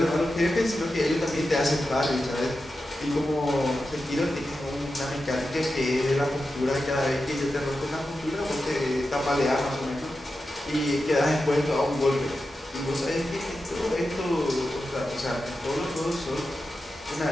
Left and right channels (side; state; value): both; normal; correlation 0.91